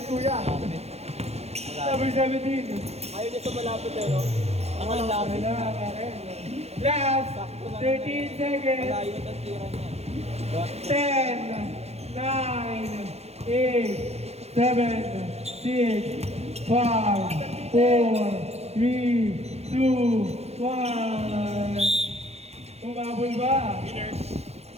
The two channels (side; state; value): left; late; 0.31 ms